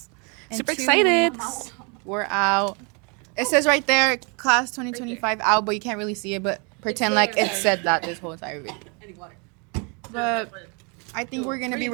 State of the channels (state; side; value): quieter; left; 33.7 dB